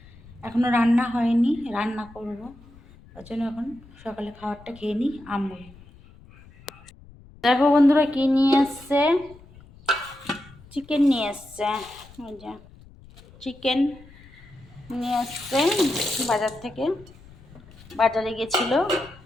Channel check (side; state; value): left; noise; rumble, 23 dB below the sound